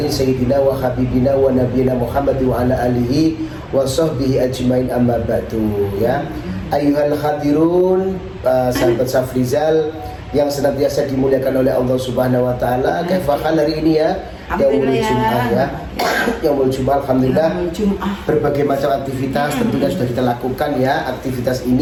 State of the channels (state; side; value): identical; both; correlation 1.00